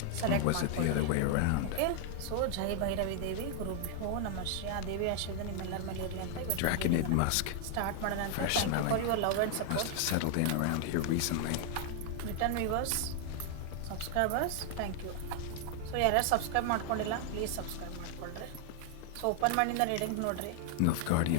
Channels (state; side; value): different; both; correlation 0.00